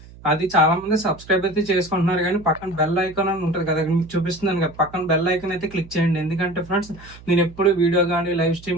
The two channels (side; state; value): right; noise; hum, 20 dB below the sound